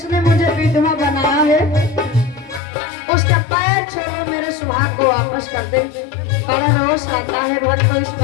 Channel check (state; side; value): drops out; right; at 2.6 s